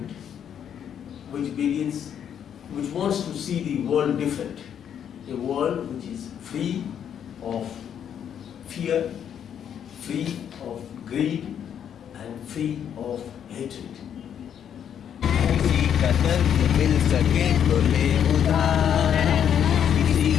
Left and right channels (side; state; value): right; quieter; 8.8 dB